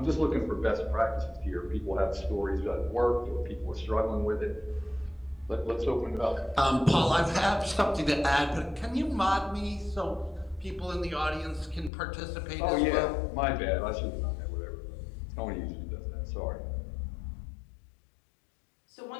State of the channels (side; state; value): right; drops out; at 11.9 s